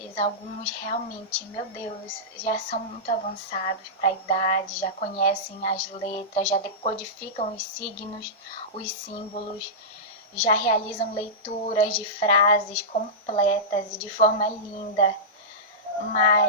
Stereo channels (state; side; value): normal; both; correlation -0.15